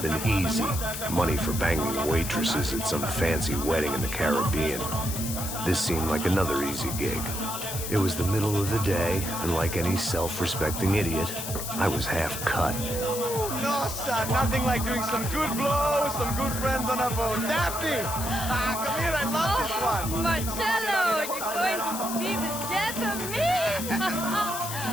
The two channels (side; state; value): left; noise; hiss, 6 dB below the sound